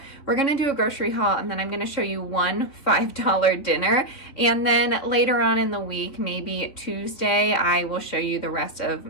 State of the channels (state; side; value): late; right; 3.4 ms